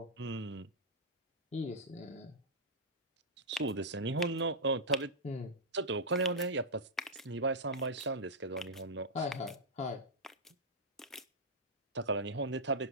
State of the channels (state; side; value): normal; both; correlation -0.08